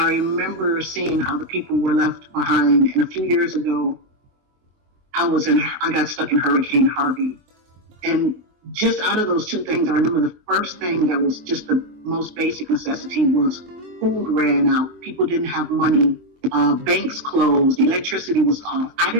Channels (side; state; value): left; late; 24 ms